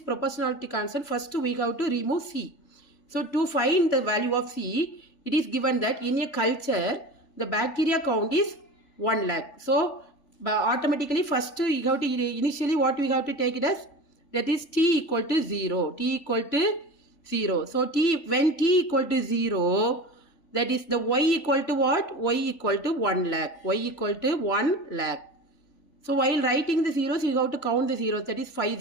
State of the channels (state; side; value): late; right; 3.5 ms